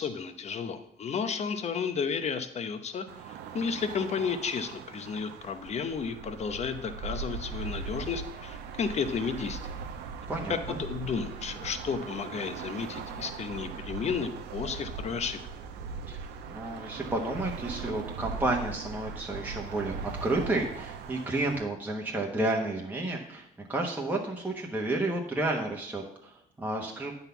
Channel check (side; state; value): both; normal; correlation 0.47